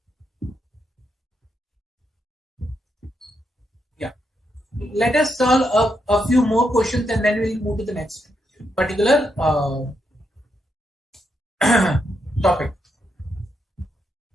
Yeah. Let us solve a few more questions and then we'll move to the next particular topic.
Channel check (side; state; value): both; normal; correlation 0.81